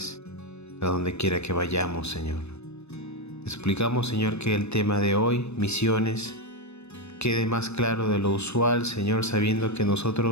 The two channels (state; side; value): late; right; 0.80 ms